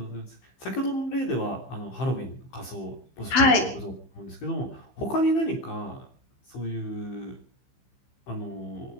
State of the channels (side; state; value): right; late; 15 ms